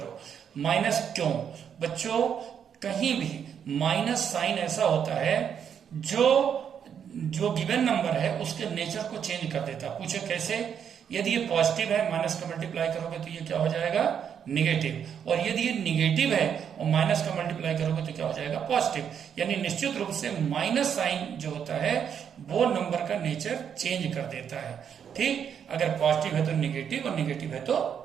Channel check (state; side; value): quieter; left; 8.0 dB